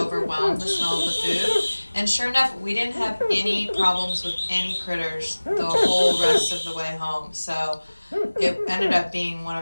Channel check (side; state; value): both; inverted; correlation -1.00